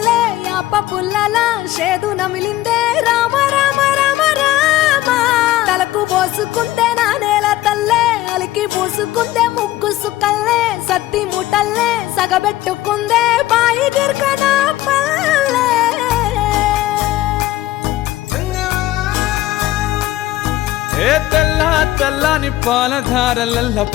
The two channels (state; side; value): quieter; right; 15.7 dB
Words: యాప పుల్లల షేదు నమిలిందే రామ రామ రామ రామ తలకు పోసుకుందే నా నేల తల్లే అలికి పూసుకుందే ముగ్గు సుక్కల్లే సత్తి ముటల్లే సగబెట్టుకుందే బాయి గిర్కన పల్లె ఏ తెల్ల తెల్లని పాలధారలల్ల